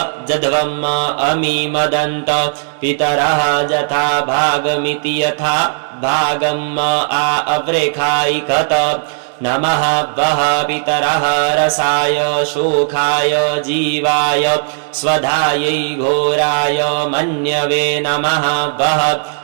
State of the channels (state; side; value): silent; left; digital silence